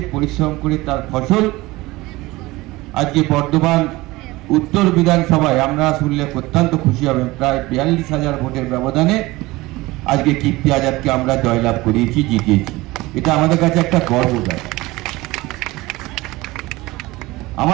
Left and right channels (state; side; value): quieter; left; 20.2 dB